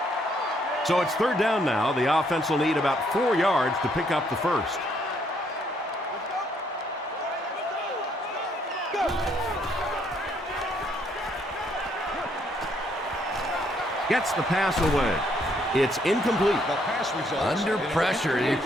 So it's 3rd down now. The offense will need about 4 yards to pick up the first. Gets the pass away. It's incomplete. The pass results Under pressure, he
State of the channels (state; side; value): normal; both; correlation 0.70